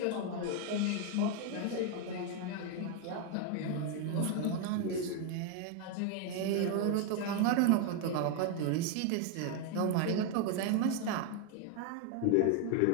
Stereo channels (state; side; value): different; both; correlation 0.01